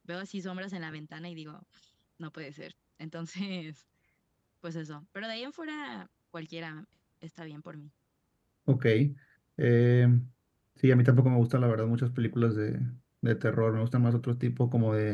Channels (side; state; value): both; identical; correlation 1.00